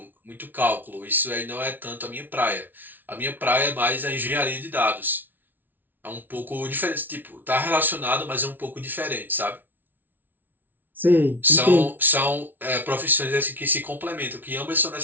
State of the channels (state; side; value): late; left; 0.088 ms